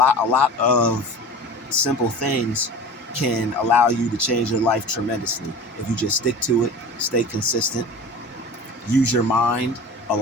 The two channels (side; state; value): both; normal; correlation 0.37